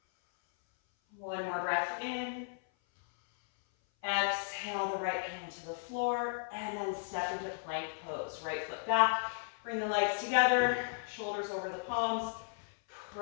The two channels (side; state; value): right; silent; 54 dB below the other